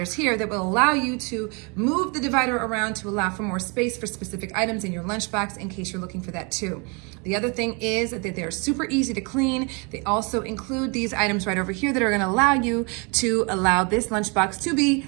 here, that will allow you to move the divider around to allow for more space for specific items in your lunchbox in case you're looking for that too. The other thing is that they're super easy to clean. They also include these items right over here that are gonna allow you to allow this lunchbox to be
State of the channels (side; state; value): left; quieter; 32.1 dB